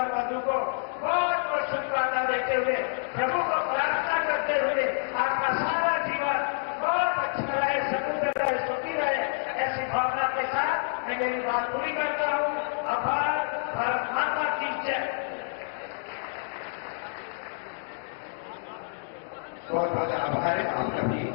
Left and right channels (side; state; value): right; silent; digital silence